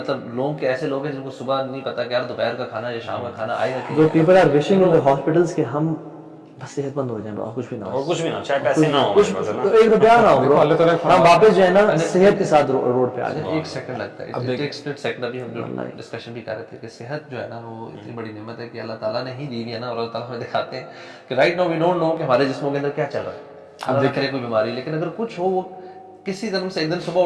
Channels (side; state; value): both; identical; correlation 1.00